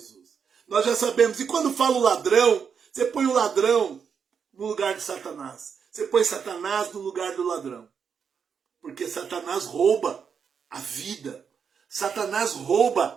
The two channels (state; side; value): quieter; left; 6.7 dB